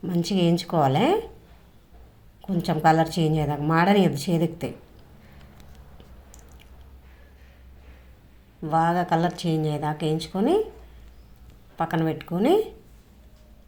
మంచిగా వేయించుకోవాలి. కొంచెం కలర్ చేంజ్ అయ్యేదాకా మాడనియద్దు, చేదెక్తాయి. బాగా కలర్ చేంజ్ అయ్యేదాకా వేయించుకొని పక్కన పెట్టుకొని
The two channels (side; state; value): both; identical; correlation 1.00